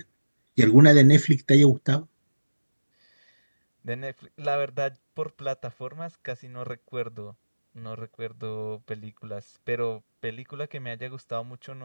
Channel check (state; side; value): inverted; both; correlation -1.00